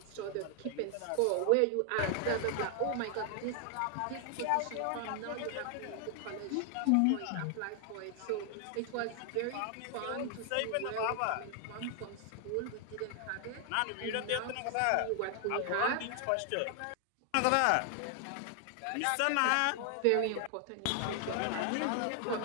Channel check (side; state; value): both; different; correlation 0.00